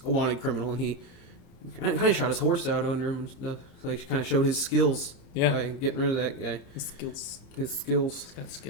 a wanted criminal, and he kind of shot his horse out under him and stuff. Like, kind of showed his skills by getting rid of that guy. His skills. His skills. He's got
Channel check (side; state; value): right; late; 29 ms